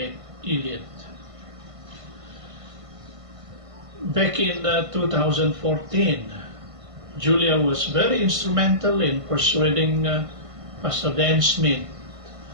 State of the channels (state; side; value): late; left; 1.5 ms